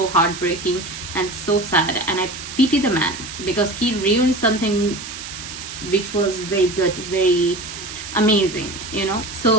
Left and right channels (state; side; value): noise; right; hiss, 10 dB below the sound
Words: heartbreaking and so sad, and I pity the man, because he ruined something which was very good, very amazing, you know.